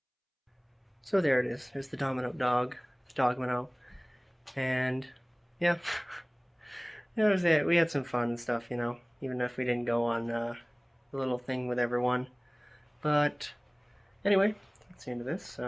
So there it is. There's the Domino dog, the Dogmino, and yeah, that was it. We had some fun and stuff, even if we didn't go on the little thing with everyone. But anyway, that's the end of this.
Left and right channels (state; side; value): identical; both; correlation 1.00